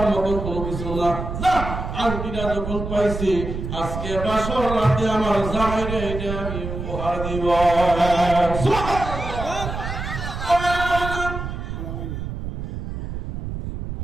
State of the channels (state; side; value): noise; right; rumble, 6 dB below the sound